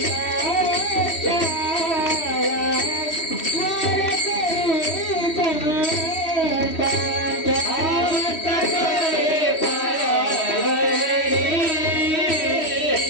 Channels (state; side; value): late; right; 3.1 ms